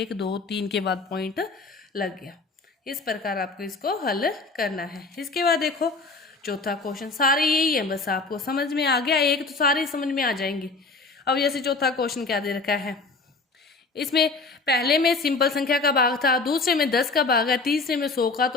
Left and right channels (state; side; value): quieter; right; 3.8 dB